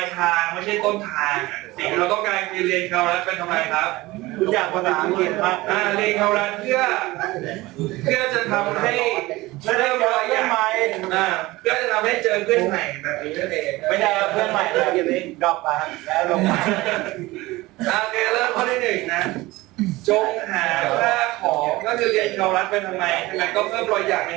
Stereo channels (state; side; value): quieter; left; 19.8 dB